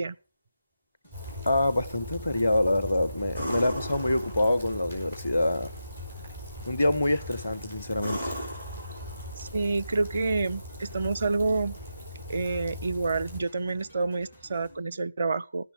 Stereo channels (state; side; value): inverted; both; correlation -0.87